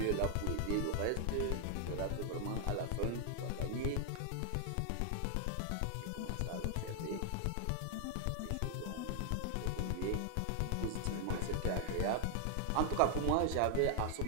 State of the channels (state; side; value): different; both; correlation 0.00